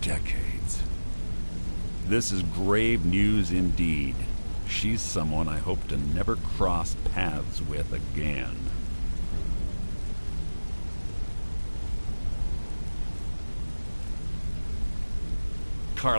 decades. This is grave news indeed. She's someone I hope to never cross paths with again.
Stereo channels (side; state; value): both; inverted; correlation -1.00